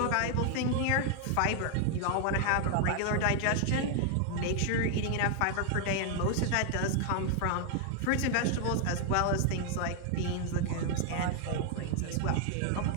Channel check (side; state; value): both; different; correlation 0.00